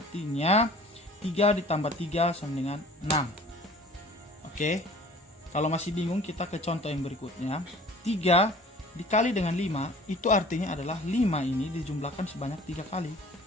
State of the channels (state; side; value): normal; both; correlation 0.48